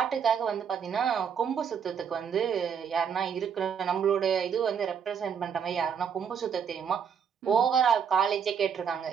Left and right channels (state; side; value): quieter; left; 7.3 dB